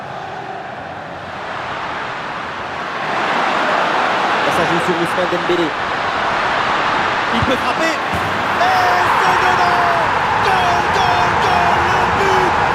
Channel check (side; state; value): both; identical; correlation 1.00